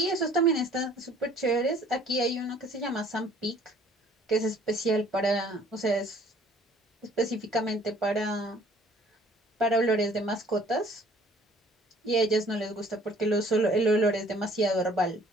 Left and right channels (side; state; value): both; normal; correlation 0.56